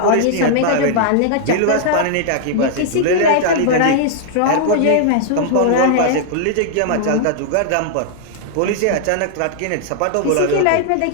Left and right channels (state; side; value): different; both; correlation -0.01